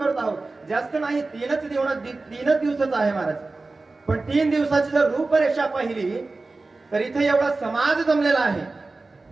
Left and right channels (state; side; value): quieter; left; 3.5 dB